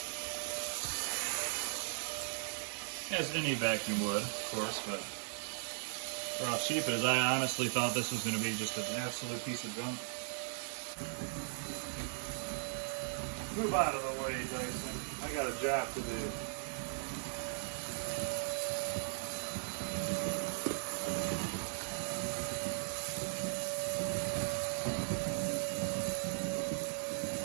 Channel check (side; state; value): left; silent; digital silence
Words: As any vacuum would, of course, but for how cheap it is, I honestly thought this was going to be just an absolute piece of junk. Move out of the way, Dyson. I got a job to do.